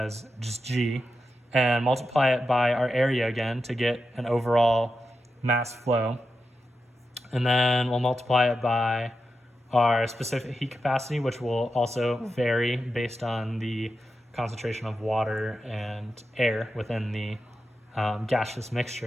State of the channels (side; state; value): both; normal; correlation 0.89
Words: just G and multiply it by our area again to get an overall mass flow. And then we'll multiply it by our specific heat capacity, which will also vary based on the concentration of water and air within the gaseous